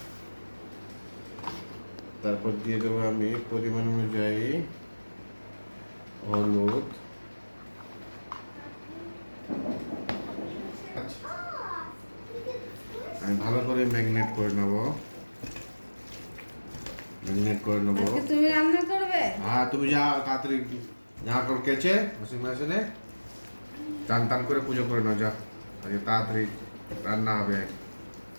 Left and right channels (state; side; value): inverted; both; correlation -1.00